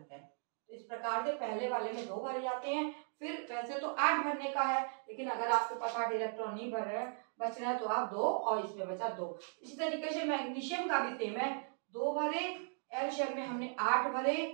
हैं। तो इस प्रकार से पहले वाले में 2 भरे जाते हैं। फिर वैसे तो 8 भरने का है, लेकिन अगर आपके पास 8 इलेक्ट्रॉन नहीं भर रहे बच रहा है तो आप 2 और इसमें बचा 2। इसी तरीके से मैग्नीशियम का भी सेम है, 2 भरे, L शेल में हमने 8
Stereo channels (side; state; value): left; silent; 53 dB below the other